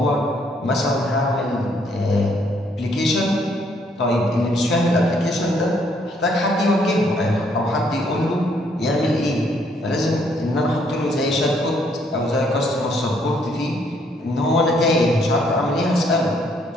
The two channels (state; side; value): normal; both; correlation 0.68